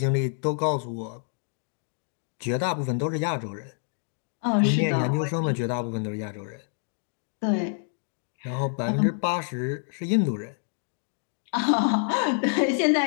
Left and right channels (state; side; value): silent; right; digital silence